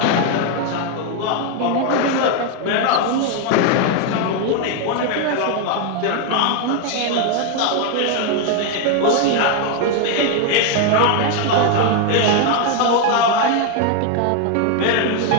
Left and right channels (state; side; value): different; both; correlation 0.01